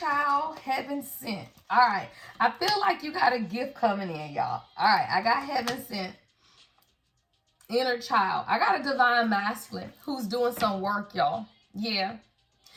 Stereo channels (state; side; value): identical; both; correlation 1.00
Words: heaven sent. All right, I feel like you got a gift coming in, y'all. All right, I got heaven sent, inner child. I got a divine masculine who's doing some work, y'all. Yeah.